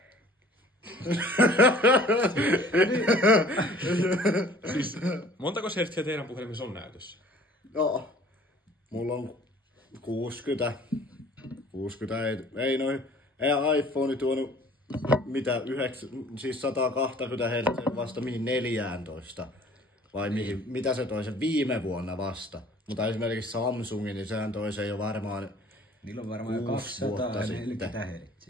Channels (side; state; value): both; normal; correlation 0.51